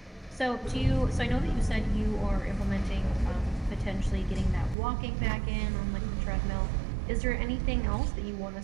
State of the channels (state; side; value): drops out; left; at 4.8 s